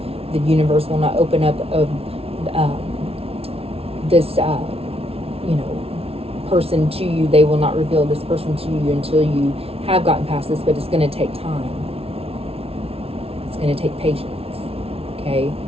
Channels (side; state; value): left; late; 0.28 ms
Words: The universe will not open up this, person to you. They will not reveal this person to you until you have gotten past this, but it's going to take time. It's going to take patience, okay?